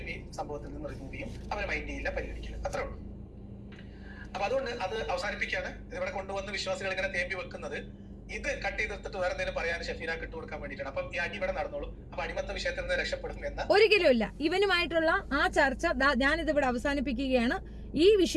ഈ സംഭവത്തിൽ നിന്ന് റിമൂവ് ചെയ്യും, അവരെ മൈൻഡ് ചെയ്യില്ല, പരിഗണിക്കില്ല. അത്രേ ഉള്ളൂ. അപ്പൊ അതുകൊണ്ട് അത് അവസാനിപ്പിക്കാണ്. ഇവിടെ കൊണ്ടുവന്ന് വിശ്വാസികൾ ഇങ്ങനെ തേമ്പി വെക്കുന്നത് ഇത് കട്ട് ചെയ്തെടുത്തിട്ട് വേറെ എന്തെങ്കിലും പറയാൻ ഷെഫീന ഇട്ടുകൊടുക്കാൻ വേണ്ടിയിട്ടാണ്. അപ്പം ഈ അടി ഇവിടെ നടന്നോളൂ. അപ്പൊ അടിമത്ത വിഷയത്തിൽ നിന്ന് രക്ഷപ്പെടും എന്ന് ഒരിക്കലും ഇല്ല. ഇവനുമായിട്ടുള്ള ആ ചർച്ച ഞാനിത് ഇവിടെ അവസാനിപ്പിക്കുകയാണ്. ഈ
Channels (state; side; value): identical; both; correlation 1.00